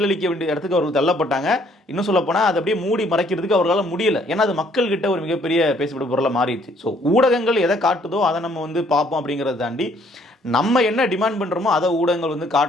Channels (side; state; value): both; normal; correlation 0.64